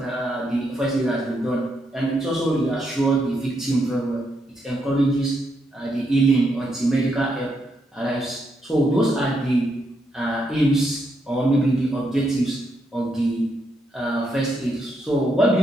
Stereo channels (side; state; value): both; normal; correlation 0.79